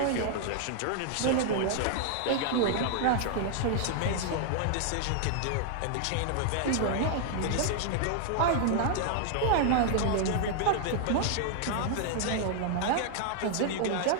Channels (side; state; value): both; different; correlation 0.00